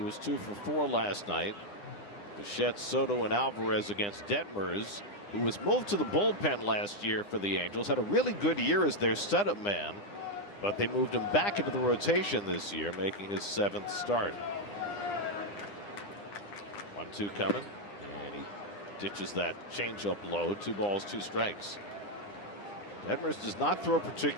was 2 for 4 last night. Bichette, Soto, and Alvarez against Detmers, who was moved to the bullpen last year for the Angels. Had a really good year as their setup man, but they moved him back into the rotation this year, making his 7th start. 1-2 coming, and he ditches that changeup low. 2 balls, 2 strikes. Detmers does not throw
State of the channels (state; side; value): late; right; 9.9 ms